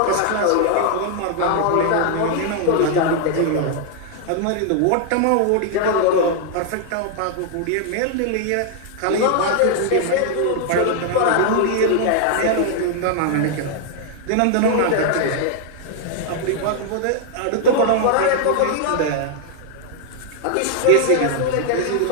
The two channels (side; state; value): both; different; correlation 0.00